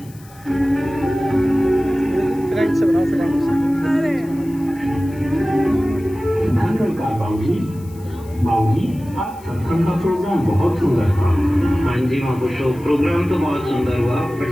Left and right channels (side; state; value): left; noise; hiss, 25 dB below the sound